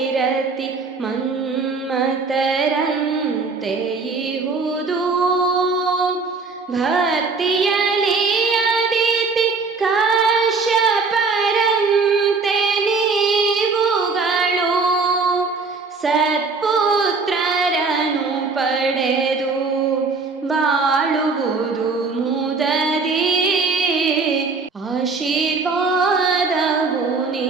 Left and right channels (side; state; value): left; quieter; 4.3 dB